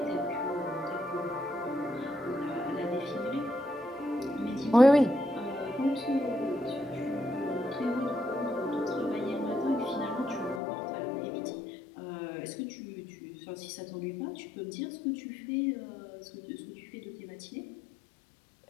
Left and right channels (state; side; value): drops out; right; at 10.6 s